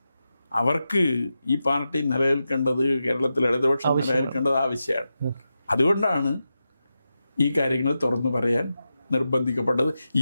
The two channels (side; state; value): both; inverted; correlation -0.90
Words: അവർക്ക് ഈ പാർട്ടി നിലനിൽക്കേണ്ടത്, കേരളത്തിൽ ഇടതുപക്ഷം നിലനിൽക്കേണ്ടത് ആവശ്യമാണ്. അതുകൊണ്ടാണ് ഈ കാര്യങ്ങൾ തുറന്നു പറയാൻ നിർബന്ധിക്കപ്പെട്ടത്.